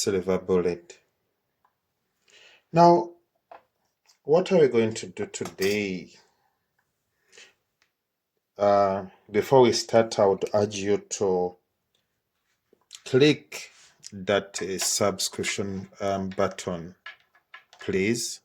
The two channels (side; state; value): both; identical; correlation 1.00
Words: Bullet. Now, what are we going to do today? Before we start, I would urge you to click that subscription button, please,